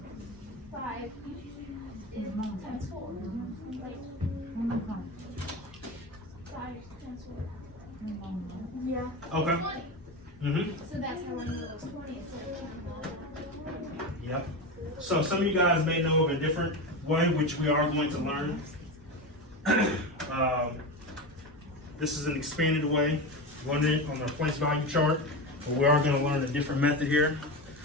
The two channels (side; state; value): both; normal; correlation 0.21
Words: 5 times 4. Like, 5 times 4. Yeah. Okay. 20. Mhm. So that's how I knew it was 20 instead of 20. Yep. So some of you guys may know of a different way, which we are going to learn. This is an expanded way, learn it on the place value chart, but we are going to learn a different method here.